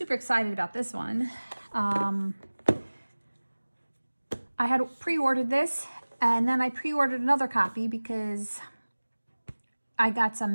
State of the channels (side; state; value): both; inverted; correlation -1.00